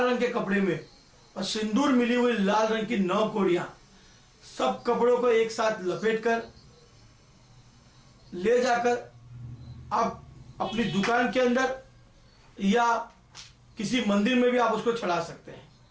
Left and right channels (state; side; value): identical; both; correlation 1.00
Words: के कपड़े में और सिंदूर मिली हुई लाल रंग की 9 कौड़ियां सब कपड़ों को एक साथ लपेट कर ले जाकर आप अपनी दुकान के अंदर या किसी मंदिर में भी आप उसको चढ़ा सकते हैं,